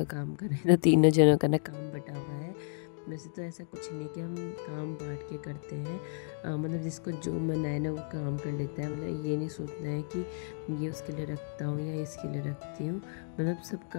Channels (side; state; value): right; silent; digital silence